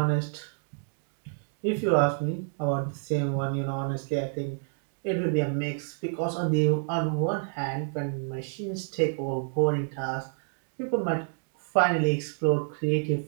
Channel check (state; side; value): silent; left; 57 dB below the other